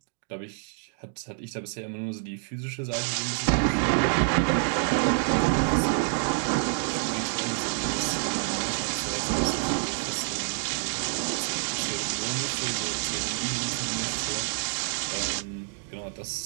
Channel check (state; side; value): silent; left; digital silence